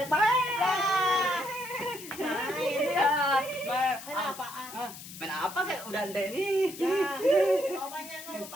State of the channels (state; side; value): noise; left; hiss, 14 dB below the sound